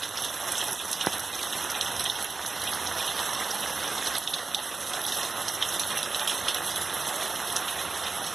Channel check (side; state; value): left; quieter; 4.0 dB